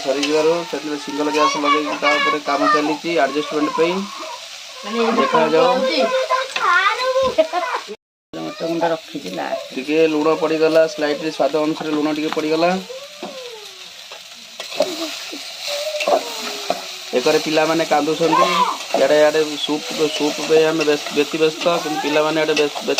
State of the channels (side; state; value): both; identical; correlation 1.00